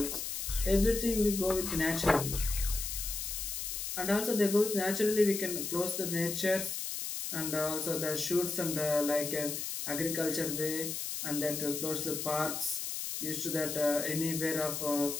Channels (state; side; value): noise; left; hiss, 4 dB below the sound